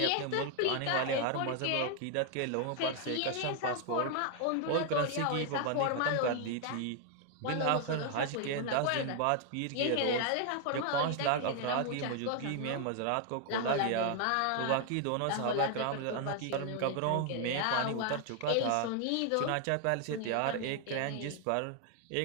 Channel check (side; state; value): both; different; correlation 0.00